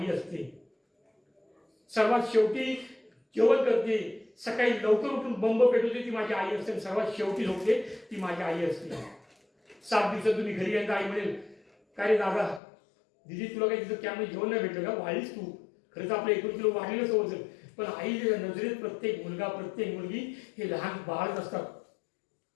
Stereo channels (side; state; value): right; drops out; at 12.6 s